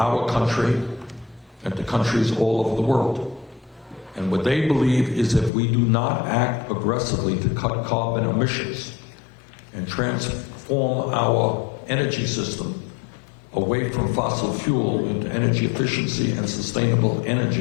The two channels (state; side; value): drops out; right; at 5.5 s